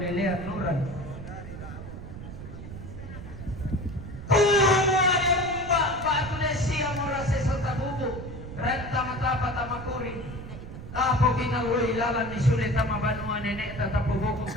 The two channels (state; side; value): noise; right; rumble, 11 dB below the sound